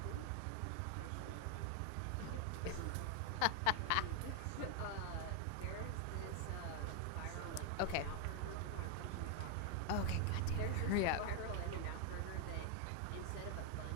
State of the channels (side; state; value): both; different; correlation 0.01